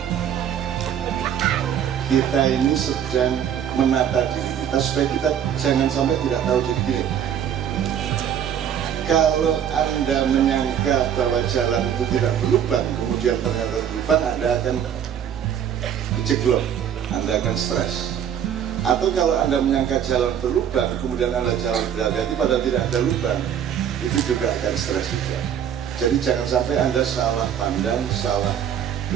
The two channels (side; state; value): left; quieter; 9.1 dB